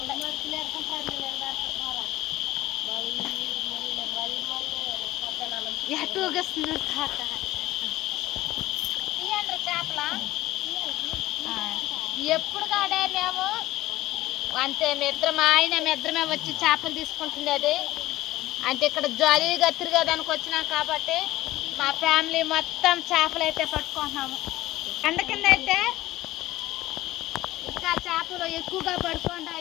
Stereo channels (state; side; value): quieter; right; 16.7 dB